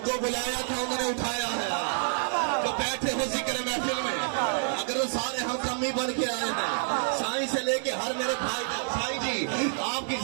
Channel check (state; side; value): silent; left; 59 dB below the other